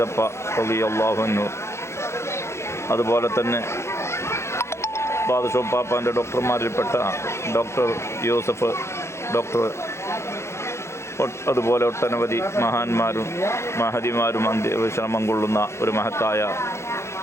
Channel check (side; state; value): right; late; 0.13 ms